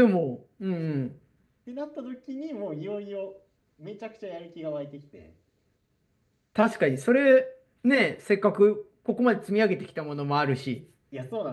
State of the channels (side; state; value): both; identical; correlation 1.00